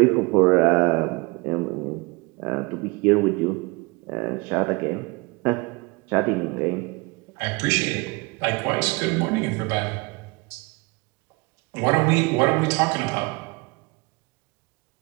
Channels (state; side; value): quieter; left; 26.4 dB